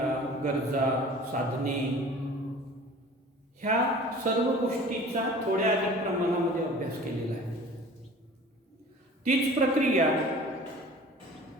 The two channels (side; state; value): both; normal; correlation 0.43